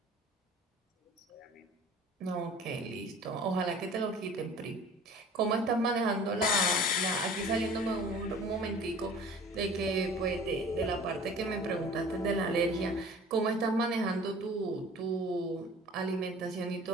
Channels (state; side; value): normal; both; correlation 0.46